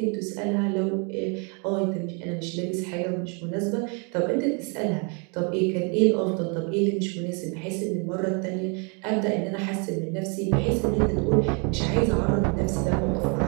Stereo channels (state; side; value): quieter; left; 35.6 dB